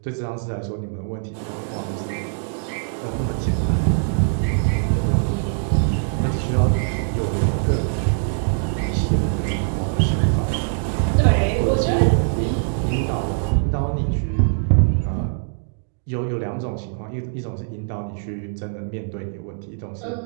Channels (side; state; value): left; silent; digital silence